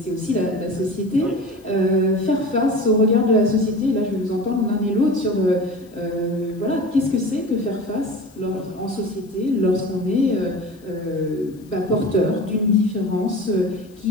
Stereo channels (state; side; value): noise; left; hiss, 29 dB below the sound